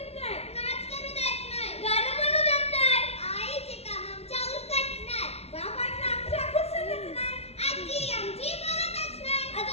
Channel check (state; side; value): late; right; 0.30 ms